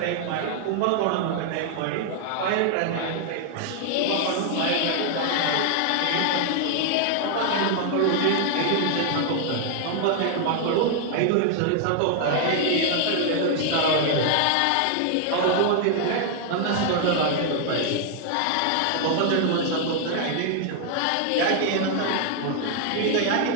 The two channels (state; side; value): different; both; correlation 0.00